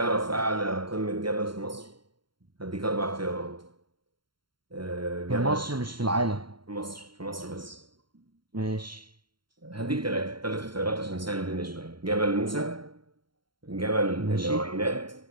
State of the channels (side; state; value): left; late; 0.73 ms